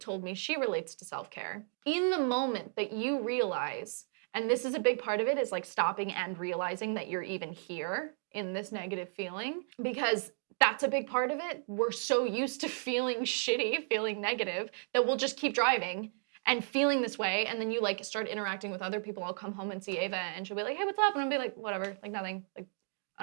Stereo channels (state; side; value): silent; left; 55 dB below the other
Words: me she relates to self-care, in the moment that you realize, and this is a big part of it, is like stopping and realizing that you're even here in this negative feeling, because that's a big part of it. We're so used to feeling shitty, feeling negative, that we'll just keep driving and feeling this way, and then you like start interacting with other people. I'll come home and see Ava, and she'll be like, hey, what's up? And I'll be like, whatever, like nothing. Like,